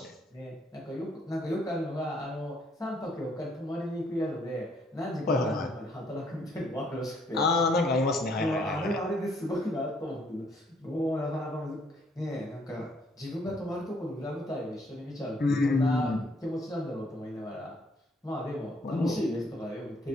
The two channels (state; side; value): normal; both; correlation 0.66